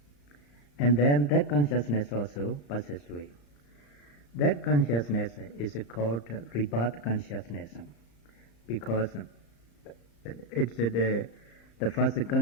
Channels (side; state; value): right; late; 35 ms